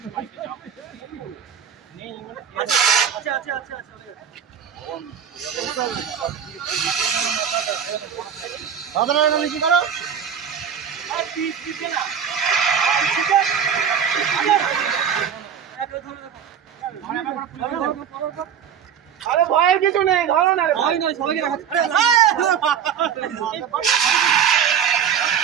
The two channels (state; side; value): quieter; left; 8.0 dB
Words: কি করো, আরে ভয়ের কিছু নেই, ধরো না, ভয় নয়, সবাইকে রাখা।